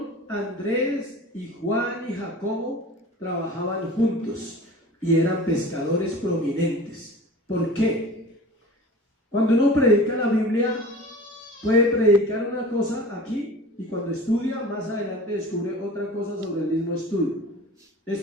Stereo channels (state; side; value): normal; both; correlation 0.39